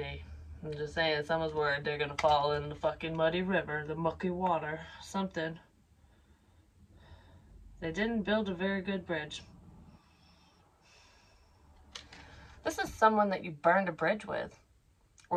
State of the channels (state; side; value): identical; both; correlation 1.00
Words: I'm just saying, someone's worried they're gonna fall in the fucking muddy river, the mucky water, something. They didn't build a very good bridge. This is someone that you burned a bridge with.